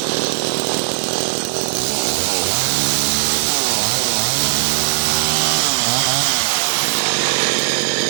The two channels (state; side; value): silent; left; 67 dB below the other